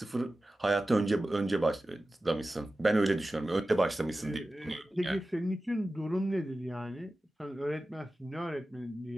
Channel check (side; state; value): both; normal; correlation 0.95